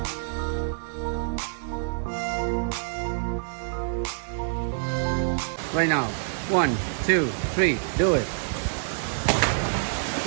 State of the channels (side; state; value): left; silent; 60 dB below the other